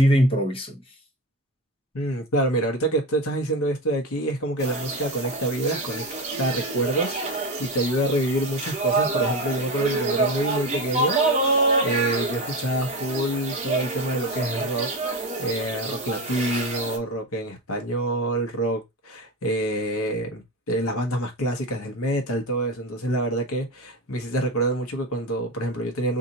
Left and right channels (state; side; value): normal; both; correlation 0.22